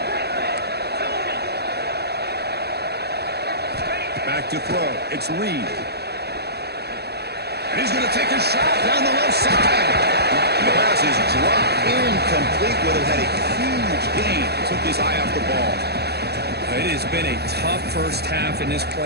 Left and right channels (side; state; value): left; late; 0.48 ms